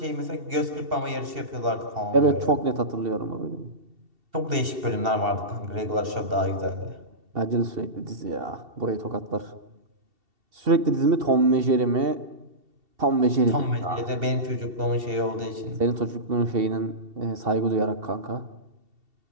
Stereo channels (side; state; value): left; late; 2.7 ms